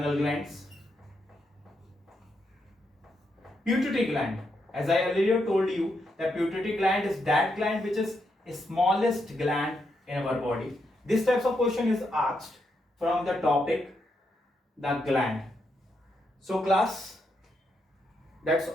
glands. Pituitary gland. As I earlier told you, the pituitary gland is that gland which is the smallest gland in our body. This types of question is asked from the topic the gland. So class, that's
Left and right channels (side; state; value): both; normal; correlation 0.81